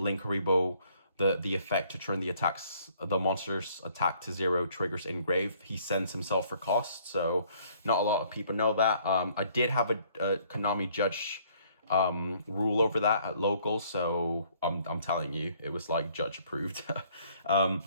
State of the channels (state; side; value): inverted; both; correlation -0.62